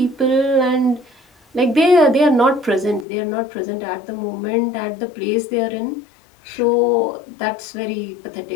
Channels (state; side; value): drops out; right; at 3.1 s